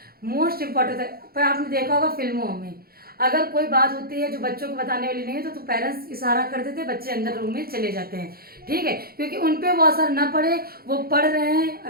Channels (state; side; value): late; left; 0.44 ms